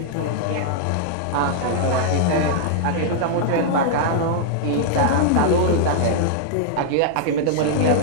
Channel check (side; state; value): both; different; correlation -0.01